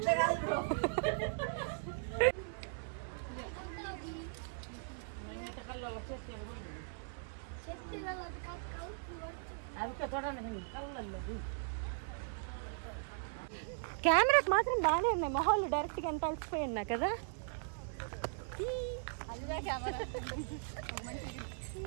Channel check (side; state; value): left; silent; 52 dB below the other